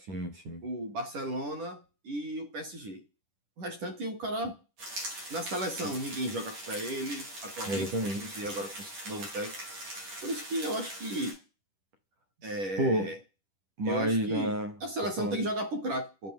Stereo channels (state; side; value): late; left; 10 ms